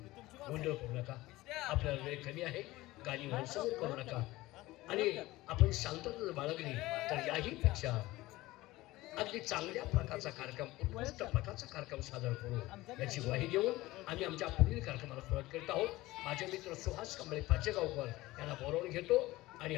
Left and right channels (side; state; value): right; quieter; 18.6 dB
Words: गोंधळ करू नका. आपल्याला वेळ कमी आहे, गाणी मनसमोर करू नका आणि आपण शांतता बाळगली तर याही पेक्षा अगदी चांगल्या प्रकारचा कार्यक्रम उत्कृष्ट प्रकारचा कार्यक्रम सादर करू याची ग्वाही देऊन आम्ही आमच्या पुढील कार्यक्रमाला सुरुवात करीत आहोत. माझे मित्र सुहास कांबळे पाचेगावकर यांना बोलावून घेतो आणि